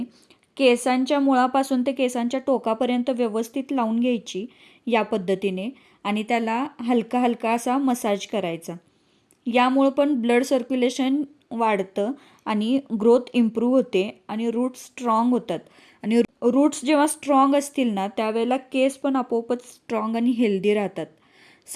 केसांच्या मुळापासून ते केसांच्या टोकापर्यंत व्यवस्थित लावून घ्यायची या पद्धतीने आणि त्याला हलका हलका असा मसाज करायचा. यामुळं पण ब्लड सर्क्युलेशन वाढतं आणि ग्रोथ इम्प्रूव्ह होते आणि रूट्स स्ट्रॉंग होतात. आणि रूट्स जेव्हा स्ट्रॉंग असतील ना त्यावेळेला केस पण आपोआपच स्ट्रॉंग आणि हेल्दी राहतात.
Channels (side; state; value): both; identical; correlation 1.00